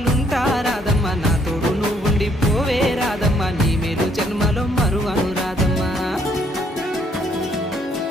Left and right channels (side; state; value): both; normal; correlation 0.68